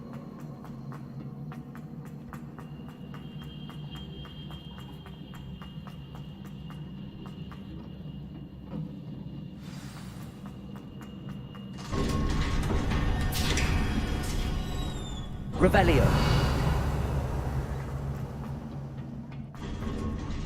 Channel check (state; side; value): identical; both; correlation 1.00